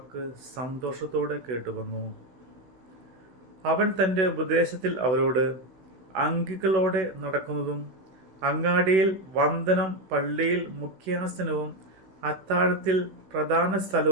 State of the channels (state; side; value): late; left; 16 ms